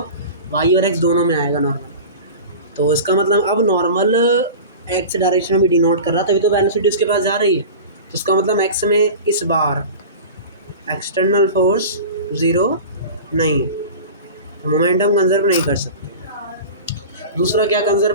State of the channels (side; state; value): both; inverted; correlation -0.34